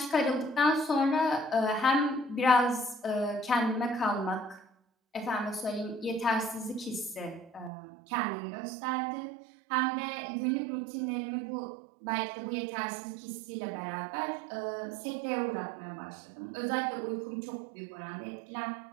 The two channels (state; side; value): drops out; left; at 7.7 s